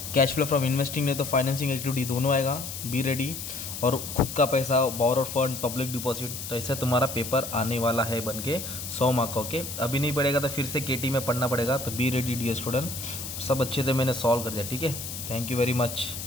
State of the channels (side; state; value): left; noise; hiss, 8 dB below the sound